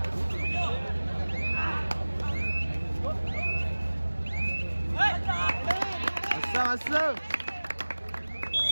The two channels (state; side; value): inverted; both; correlation -1.00